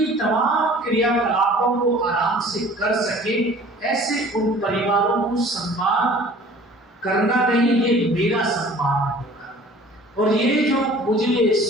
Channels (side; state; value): both; normal; correlation 0.48